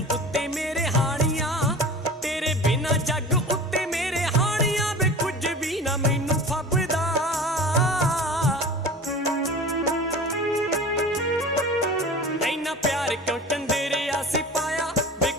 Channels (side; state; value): both; normal; correlation 0.37